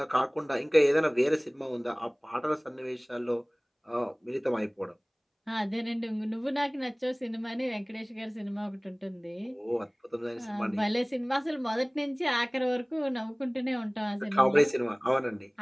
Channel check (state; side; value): identical; both; correlation 1.00